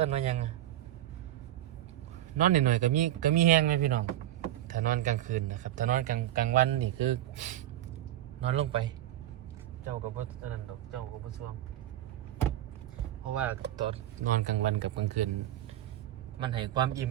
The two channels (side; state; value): left; quieter; 13.0 dB